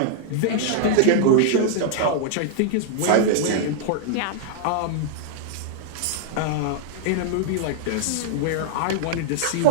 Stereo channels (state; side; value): different; both; correlation -0.01